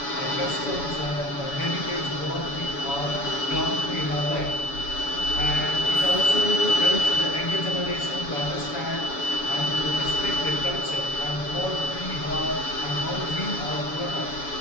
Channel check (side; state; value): right; late; 7.1 ms